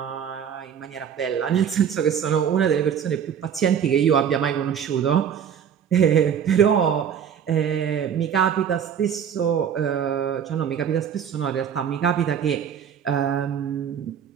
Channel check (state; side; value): quieter; left; 8.3 dB